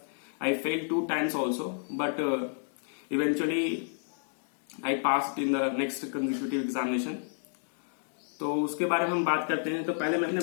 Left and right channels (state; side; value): silent; right; digital silence